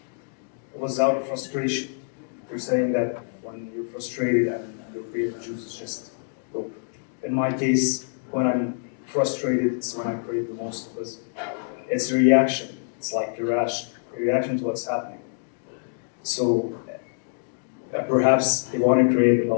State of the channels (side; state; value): right; silent; digital silence